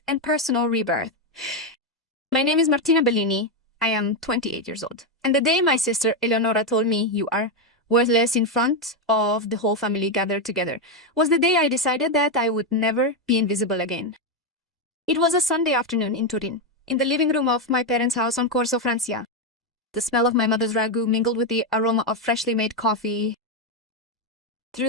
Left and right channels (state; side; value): normal; both; correlation 0.05